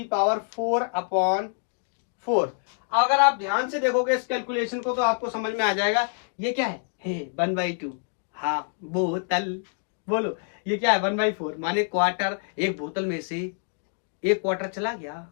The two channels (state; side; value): silent; right; 61 dB below the other